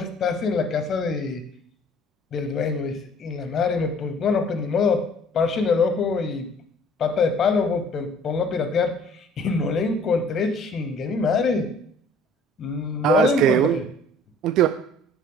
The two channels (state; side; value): normal; both; correlation 0.53